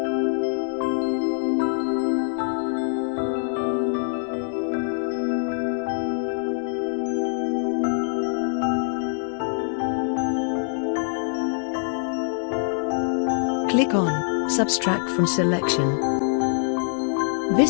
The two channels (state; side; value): silent; right; 59 dB below the other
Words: Click on Subtract from Selection.